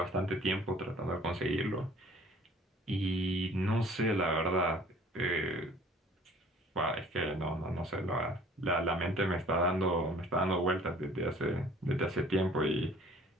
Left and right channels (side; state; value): both; normal; correlation 0.52